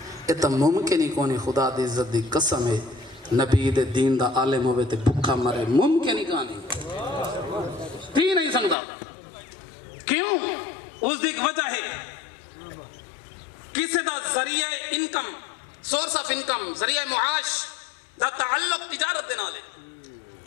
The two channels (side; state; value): right; drops out; at 8.8 s